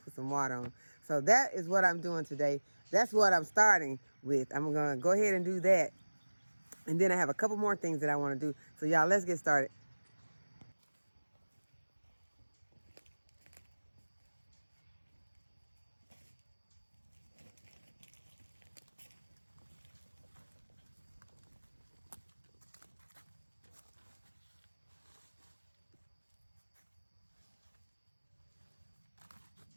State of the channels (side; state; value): both; inverted; correlation -1.00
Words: put some water on. So that is what I'm doing today. That's what I'm starting with. I'm gonna go ahead and do that. And then I have a couple more things that I want to do. So y'all, let's get started.